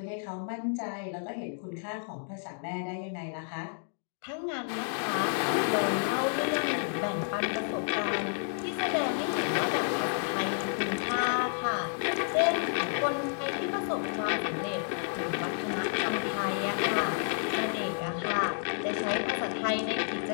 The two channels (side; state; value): right; silent; digital silence